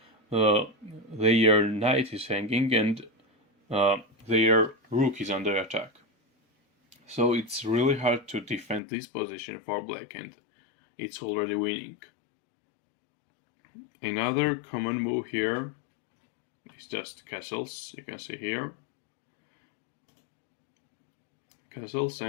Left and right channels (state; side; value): drops out; right; at 8.8 s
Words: their knight is hanging, and their rook is under attack. So it's really hard to defend this position for black, and it's already winning. Another common move here is just castles, you can see here. Castles,